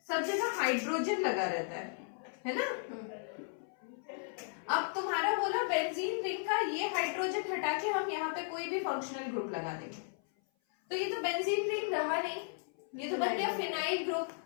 सब जगह हाइड्रोजन लगा रहता है ना। अब तुम्हारा बोला बेंजीन रिंग का ये हाइड्रोजन हटा के हम यहाँ पे कोई भी फंक्शनल ग्रुप लगा देंगे, तो ये तो बेंजीन रिंग रहा नहीं, ये तो बन गया फिनाइल ग्रुप।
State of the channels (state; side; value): silent; right; 54 dB below the other